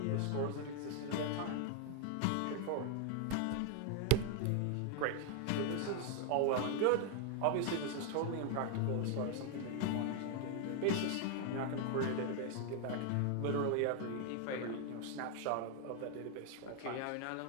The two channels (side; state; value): both; different; correlation 0.00